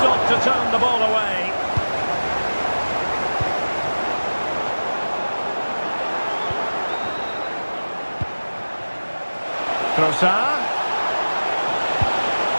to turn the ball away. Trossard.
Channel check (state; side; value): inverted; both; correlation -1.00